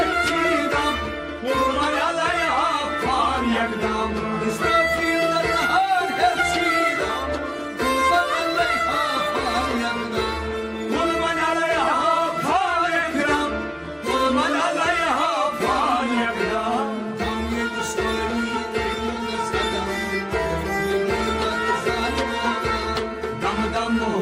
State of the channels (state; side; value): identical; both; correlation 1.00